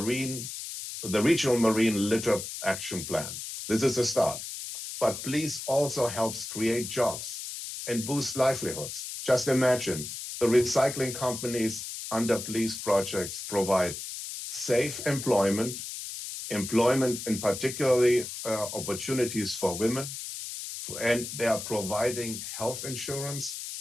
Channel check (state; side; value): noise; left; hiss, 8 dB below the sound